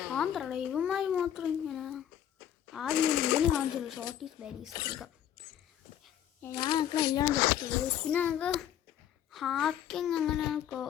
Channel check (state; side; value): quieter; right; 10.5 dB